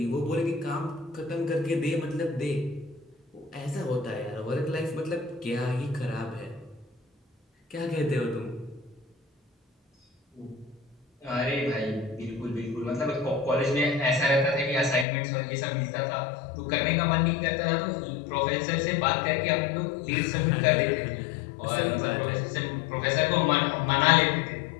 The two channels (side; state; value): right; drops out; at 15.1 s